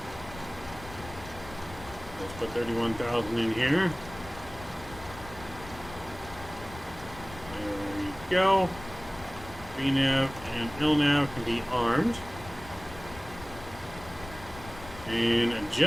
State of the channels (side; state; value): left; noise; rumble, 15 dB below the sound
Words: put 31,000 in here. There we go. VNav and LNav can be armed. And